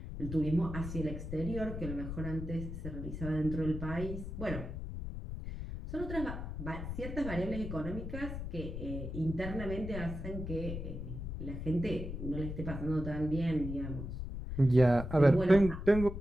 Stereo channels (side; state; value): left; noise; rumble, 6 dB below the sound